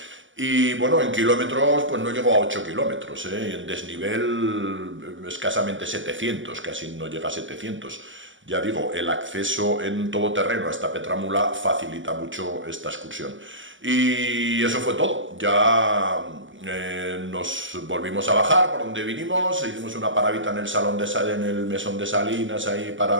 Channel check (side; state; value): left; late; 0.56 ms